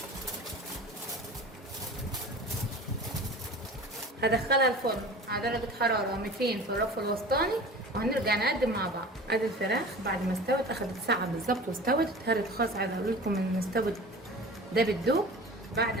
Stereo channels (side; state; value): both; normal; correlation 0.38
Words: هدخلها الفرن على درجة حرارة 200 في الرف الوسطاني وهنرجع نقدم مع بعض. ادي الفراخ بعد ما استوت، اخدت ساعة بالظبط واستوت. اتهرت خالص. عايزة اقول لكم ان استوت ده بالدوب. بعد